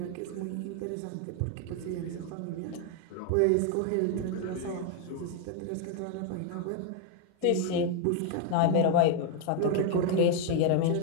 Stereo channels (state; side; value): different; both; correlation 0.01